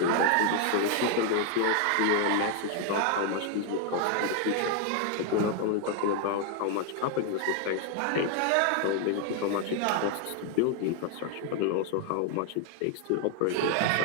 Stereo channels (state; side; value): different; both; correlation 0.00